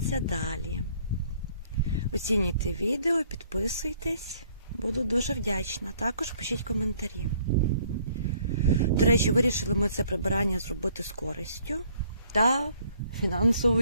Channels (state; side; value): inverted; both; correlation -0.62